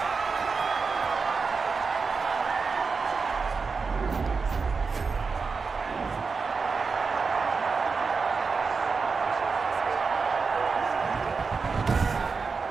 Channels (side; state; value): left; quieter; 4.8 dB